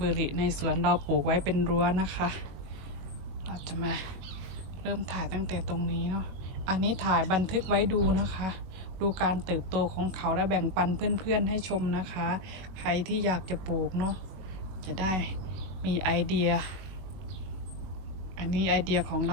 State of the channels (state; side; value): late; left; 21 ms